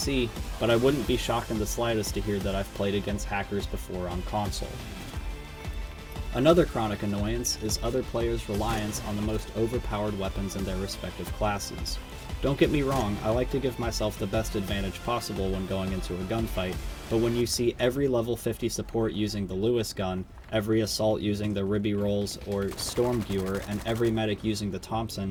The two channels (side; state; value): both; identical; correlation 1.00